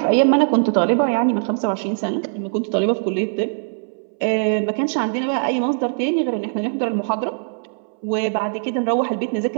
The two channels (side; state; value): left; silent; 65 dB below the other